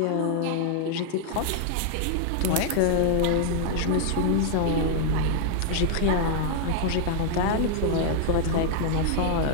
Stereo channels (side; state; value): both; different; correlation 0.00